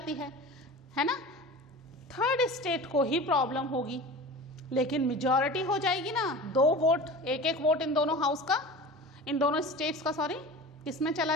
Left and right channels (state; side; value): normal; both; correlation 0.35